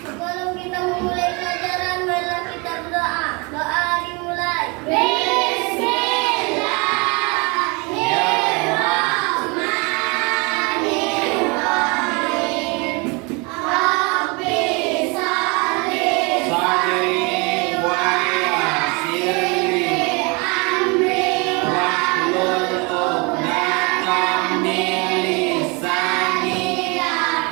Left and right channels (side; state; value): left; quieter; 29.3 dB